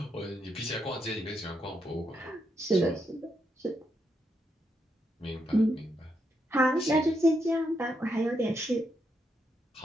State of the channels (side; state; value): both; normal; correlation 0.80